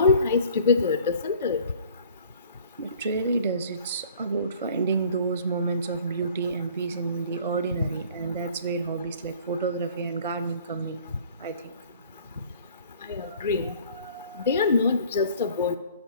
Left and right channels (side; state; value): both; inverted; correlation -0.51